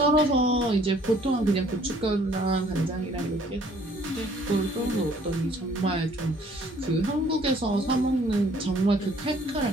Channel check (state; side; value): normal; both; correlation 0.59